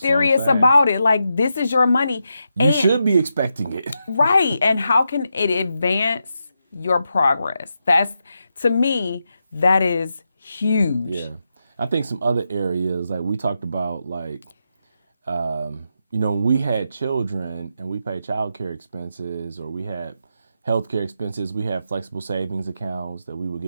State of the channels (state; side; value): inverted; both; correlation -0.85